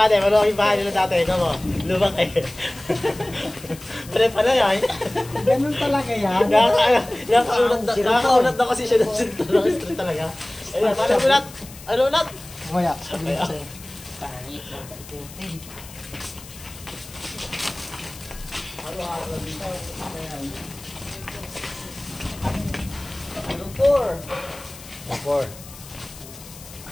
maluwag yung bahay nila dati, ikaw mo, lubak eh. Pala pala yan. Ganun talaga yan. Nakakaunat na kasi siya ng street talaga. Ayun, paano ulat? Ano ulat? Kaya, sabi ko sa'yo. Pangit mo ba ikutin? Four.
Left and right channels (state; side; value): noise; left; hiss, 17 dB below the sound